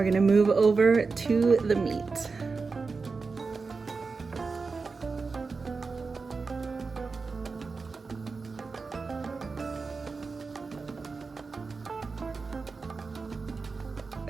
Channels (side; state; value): left; quieter; 4.4 dB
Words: gonna move over to the meat.